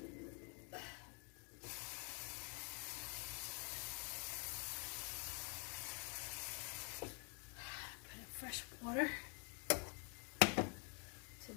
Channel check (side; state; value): right; quieter; 37.8 dB